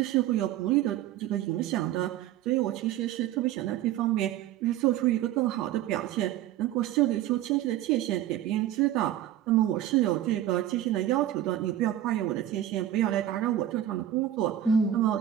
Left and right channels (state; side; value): quieter; left; 12.1 dB